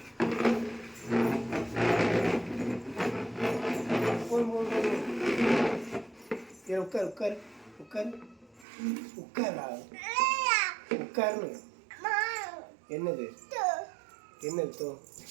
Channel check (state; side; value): drops out; left; at 8.7 s